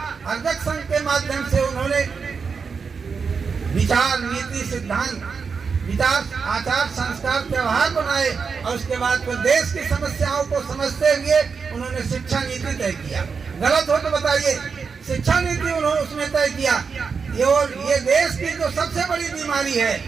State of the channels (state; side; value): quieter; left; 5.5 dB